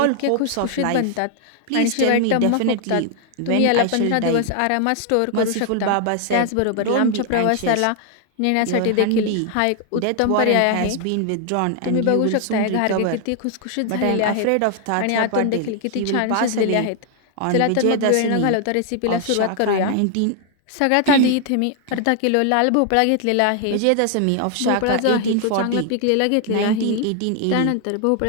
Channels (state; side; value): different; both; correlation 0.00